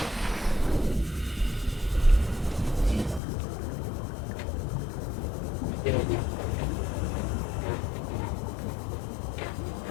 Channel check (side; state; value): right; drops out; at 3.2 s